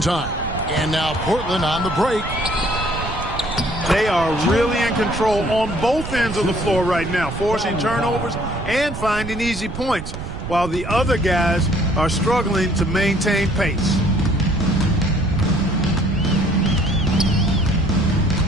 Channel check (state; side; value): noise; right; rumble, 8 dB below the sound